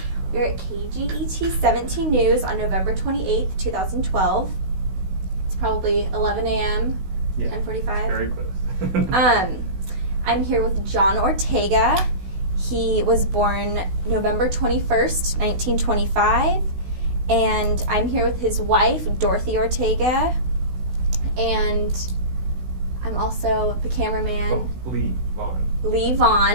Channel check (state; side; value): late; left; 16 ms